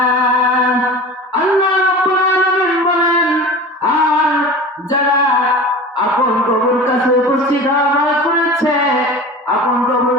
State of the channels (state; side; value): normal; both; correlation 0.35